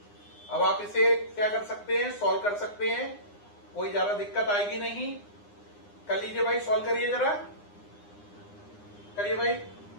अब आप इसे क्या कर सकते हैं? सॉल्व कर सकते हैं, कोई ज्यादा दिक्कत आएगी नहीं। कर लीजिए भाई, सॉल्व करिए जरा, करिए भाई,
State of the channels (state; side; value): late; right; 9.8 ms